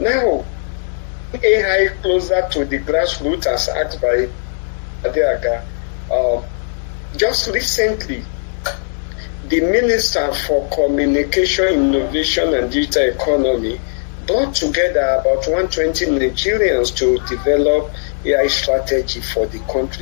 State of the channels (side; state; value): right; silent; 60 dB below the other